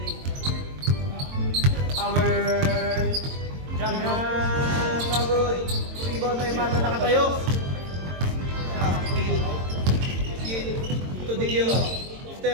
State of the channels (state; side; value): late; left; 22 ms